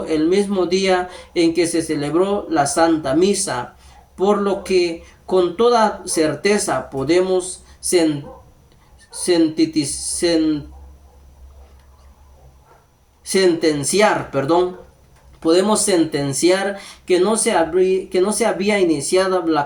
el mismo día en que se celebró la Santa Misa, por lo que con toda certeza podemos sentenciar que no se había iniciado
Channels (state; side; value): identical; both; correlation 1.00